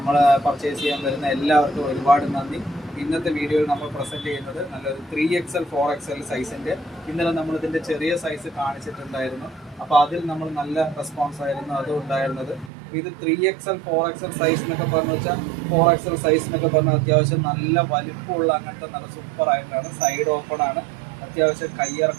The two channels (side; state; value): left; drops out; at 12.7 s